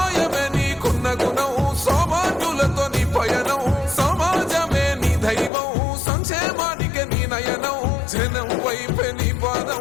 నీకున్న గుణం, సౌభాగ్యులతో నీ పయనం, సమాజమే నీ దైవం, సంక్షేమానికే నీ నయనం, జనం వైపే నీ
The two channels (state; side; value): drops out; right; at 5.5 s